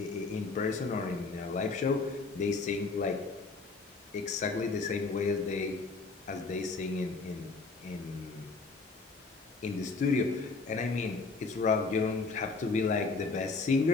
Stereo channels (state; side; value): quieter; right; 4.0 dB